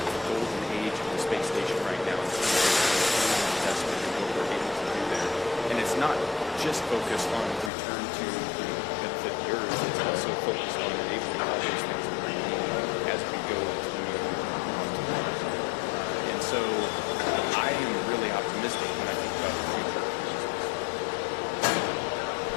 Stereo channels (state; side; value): drops out; right; at 7.7 s